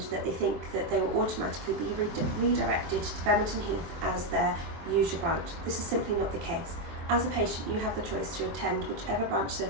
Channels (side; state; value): left; late; 24 ms